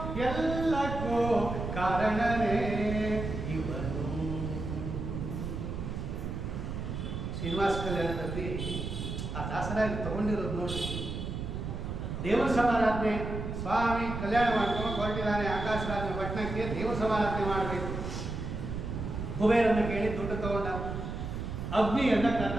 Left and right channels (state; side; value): noise; right; rumble, 5 dB below the sound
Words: ಎಲ್ಲಕ್ಕೂ ಕಾರಣನೇ ಇವನು. ಶ್ರೀನಿವಾಸ ಕಲ್ಯಾಣದಲ್ಲಿ ಆ ದಾಸರಾಗಿ ತಗೊಂಡಿರೋದು ನೋಡಿ. ದೇವರ ಸಮಾರಾಧನೆ, ಸ್ವಾಮಿ ಕಲ್ಯಾಣ ಮಾಡ್ಕೊಂಡು ಹೊರಟಿದ್ದಾನೆ ಆಕಾಶರಾಜನ ಪಟ್ಟಣಕ್ಕೆ, ದೇವರ ಸಮಾರಾಧನೆ ಮಾಡಬೇಕು. ಕುಬೇರನ್ನ ಕೇಳಿ ದುಡ್ಡು ತಗೊಂಡ. ಅಗ್ನಿಯನ್ನ ಕರೆದ.